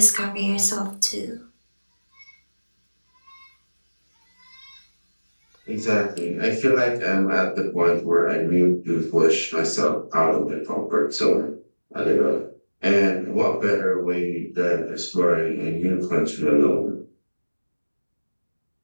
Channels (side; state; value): both; inverted; correlation -1.00